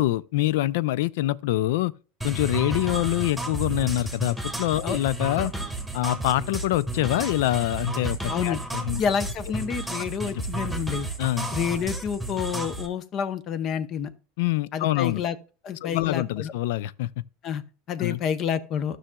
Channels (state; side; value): quieter; right; 8.4 dB